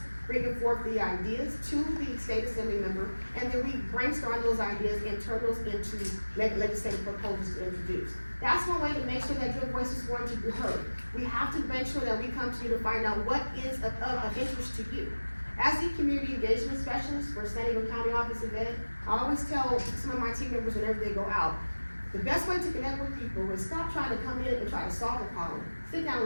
bringing forth the ideas to the state assembly member, and then we brainstorm those ideas and turn those into legislative proposals to introduce. That's one way to make sure that your voice is going to be heard. We have to make sure that we come to you to find out what is of interest to you. As the community engagement specialist for San Diego County Office of Ed, I always tell some of my team members whenever they go out, the best way to connect with people is stop trying to come in and try to solve a problem. Sit down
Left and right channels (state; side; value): inverted; both; correlation -1.00